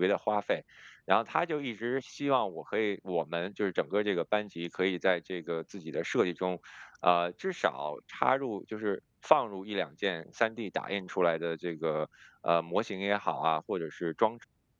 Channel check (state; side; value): identical; both; correlation 1.00